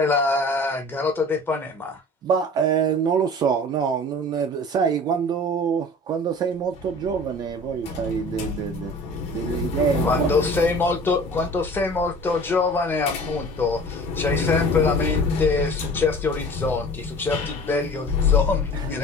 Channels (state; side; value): normal; both; correlation 0.42